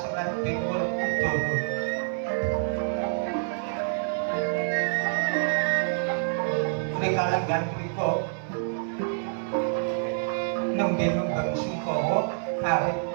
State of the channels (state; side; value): silent; left; digital silence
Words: Dewa Udara punika lenggan punika nembe nembang Sungkawa awit